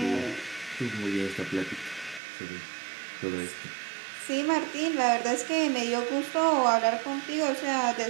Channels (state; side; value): drops out; left; at 2.2 s